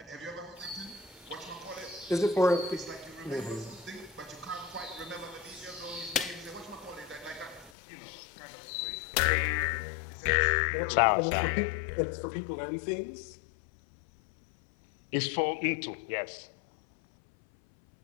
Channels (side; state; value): right; drops out; at 7.7 s